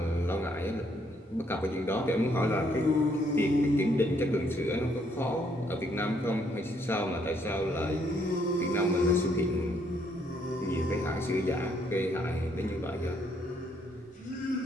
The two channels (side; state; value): both; normal; correlation 0.70